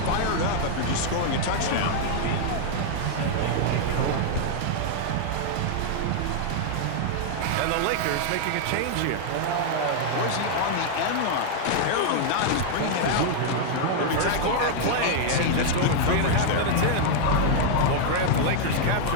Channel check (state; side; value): different; both; correlation 0.00